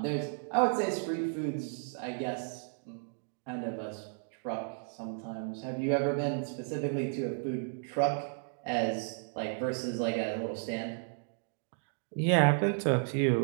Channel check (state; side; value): silent; left; digital silence